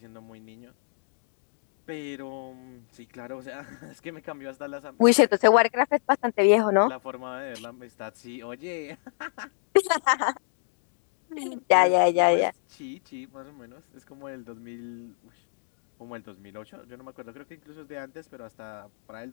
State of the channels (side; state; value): right; silent; digital silence